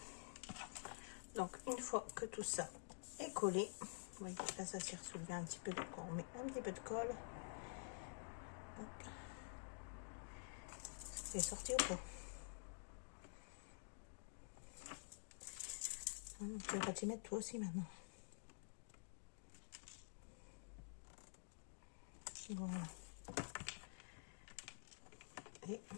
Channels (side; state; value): right; silent; digital silence